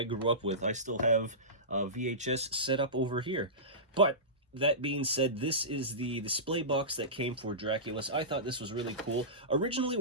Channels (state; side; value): normal; both; correlation -0.20